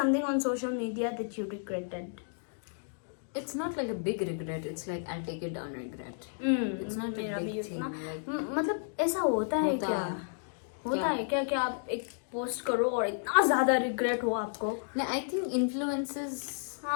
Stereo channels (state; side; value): silent; right; digital silence